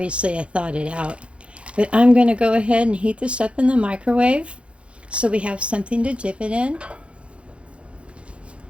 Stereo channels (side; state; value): left; late; 0.060 ms